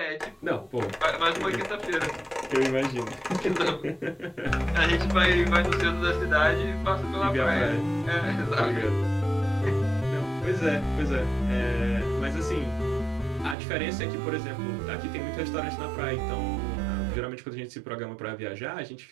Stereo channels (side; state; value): left; drops out; at 13.6 s